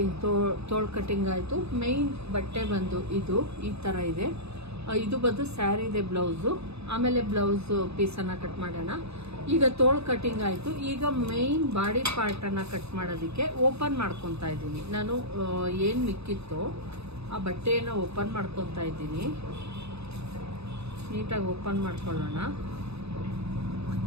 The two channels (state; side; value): late; left; 0.79 ms